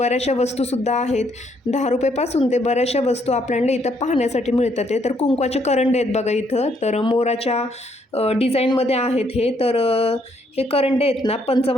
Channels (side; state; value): both; normal; correlation 0.71